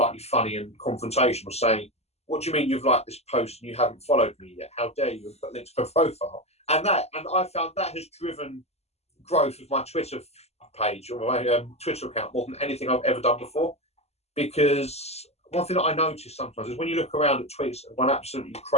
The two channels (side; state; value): right; late; 0.30 ms